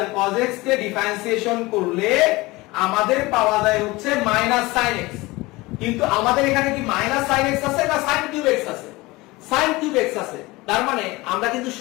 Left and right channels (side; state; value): right; quieter; 21.6 dB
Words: cos x কে ডিফারেন্সিয়েশন করলে আমাদের পাওয়া যায় হচ্ছে মাইনাস sin x। কিন্তু আমাদের এখানে কি মাইনাস sin x আছে না sin কিউব x আছে? sin কিউব x আছে। তার মানে আমরা কিন্তু